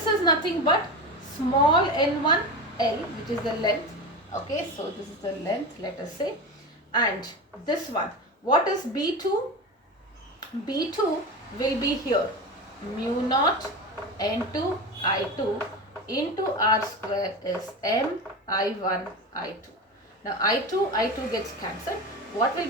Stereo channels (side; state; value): both; normal; correlation 0.24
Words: is nothing but small n1 L, which is the length. Okay, so this is the length, let us say. And this one, what is B2? B2 will be here. Mu naught N2 I2 into R square is M I1 I2. Now I2 gets cancelled. What will